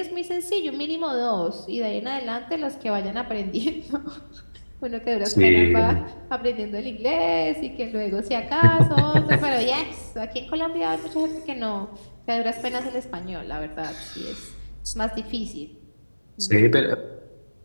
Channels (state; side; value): inverted; both; correlation -1.00